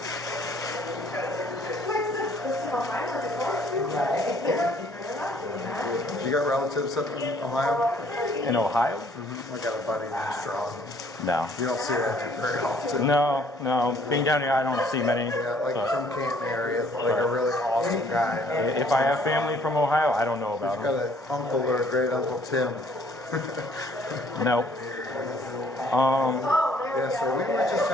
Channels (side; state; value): both; normal; correlation 0.60